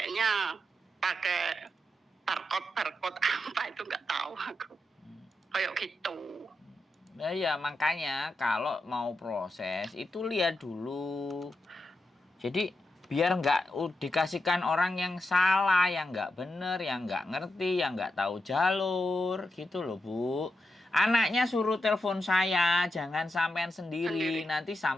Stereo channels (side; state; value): both; normal; correlation 0.87